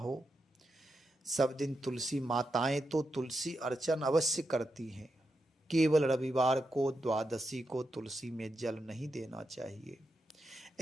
सब दिन तुलसी माताएं तो तुलसी अर्चन अवश्य करती हैं। केवल रविवार को, द्वादशी को तुलसी में जल नहीं देना चाहिए,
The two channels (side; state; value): both; normal; correlation 0.86